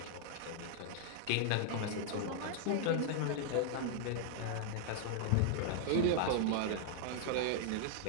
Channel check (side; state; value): both; different; correlation -0.01